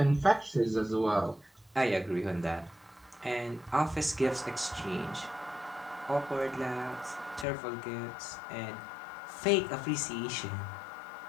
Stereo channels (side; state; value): right; drops out; at 7.5 s